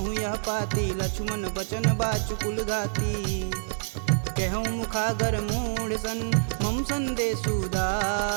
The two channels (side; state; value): left; silent; digital silence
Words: यह पाती, लक्ष्मण बचन बाचु कुल घाती। कहूँ मुखागर मूढ़ सन, मम संदेश